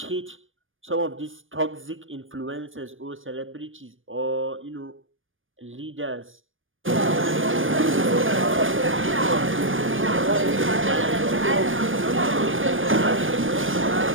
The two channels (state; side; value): late; left; 0.58 ms